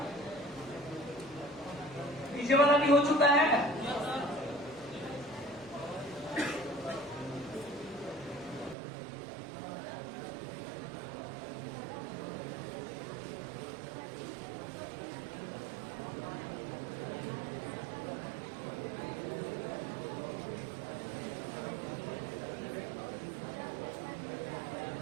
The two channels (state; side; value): drops out; left; at 8.8 s